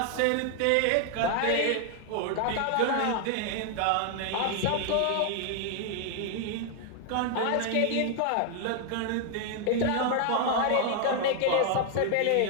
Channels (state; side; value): different; both; correlation 0.00